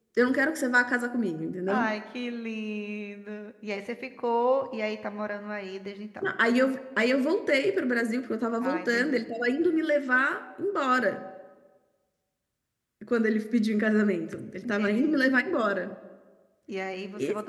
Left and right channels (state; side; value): identical; both; correlation 1.00